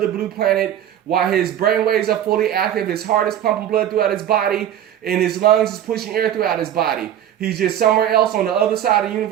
blue planet while his brain waves are fully active, his heart is pumping blood throughout his body, and his lungs is pushing air throughout his body. He's just somewhere else on the other side of the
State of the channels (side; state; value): left; quieter; 10.7 dB